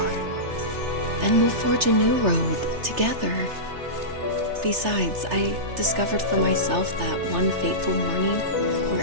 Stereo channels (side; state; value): left; late; 3.3 ms